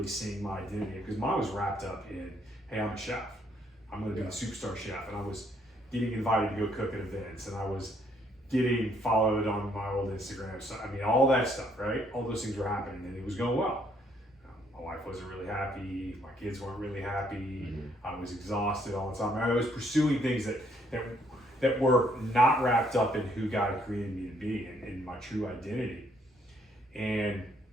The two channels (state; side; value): normal; both; correlation 0.69